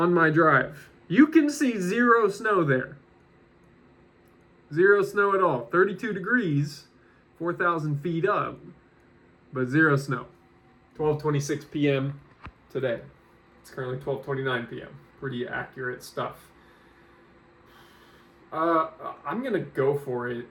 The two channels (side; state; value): both; identical; correlation 1.00